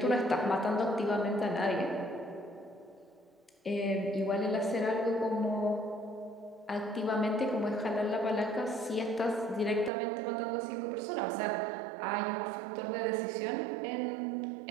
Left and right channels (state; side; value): drops out; left; at 9.9 s